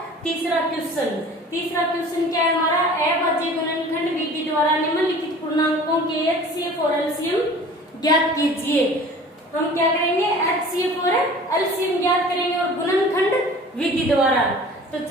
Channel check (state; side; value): normal; both; correlation 0.44